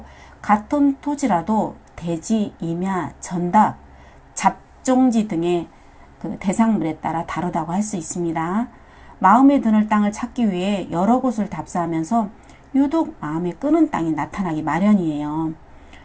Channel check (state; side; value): identical; both; correlation 1.00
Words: 같은 토지라도 대지, 임야, 전답, 잡종지 등의 그 대상물에 따라 다르다고 할 수 있습니다. 마음에 드는 땅을 찾기 위해 여러 곳을 답사하면서 유독 마음에 끄는 땅이 나타나기 마련이에요.